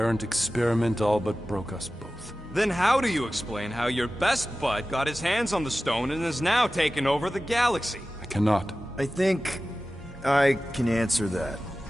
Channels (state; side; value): normal; both; correlation 0.95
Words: experiment all but broke us both. Then how do you explain how your best bud got his hands on the stone and is now taking over the galaxy? I cannot. I think I can answer that.